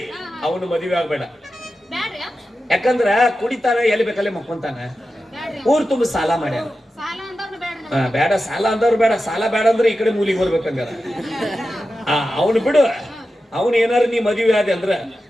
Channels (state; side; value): normal; both; correlation 0.92